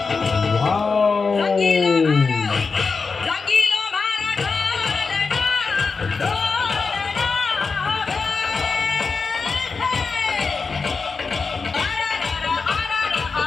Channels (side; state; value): right; quieter; 4.7 dB